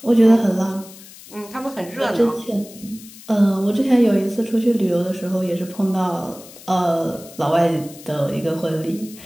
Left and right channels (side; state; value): left; noise; hiss, 19 dB below the sound